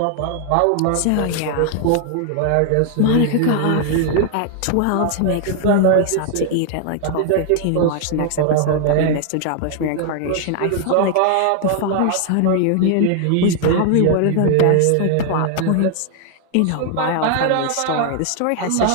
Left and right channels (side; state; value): both; different; correlation 0.00